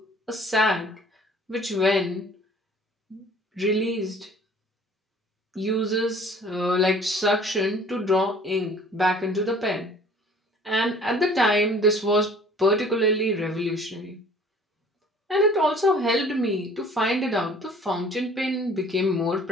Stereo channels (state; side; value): normal; both; correlation 0.51